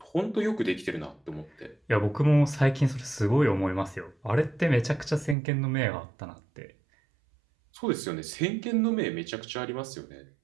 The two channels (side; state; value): left; drops out; at 5.4 s